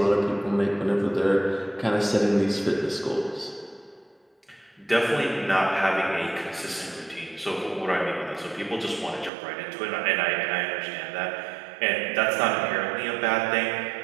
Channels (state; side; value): drops out; left; at 9.3 s